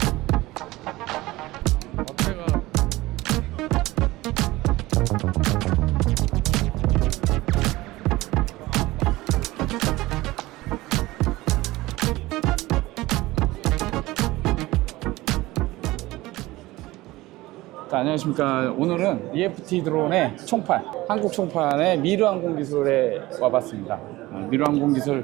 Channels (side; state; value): left; quieter; 18.9 dB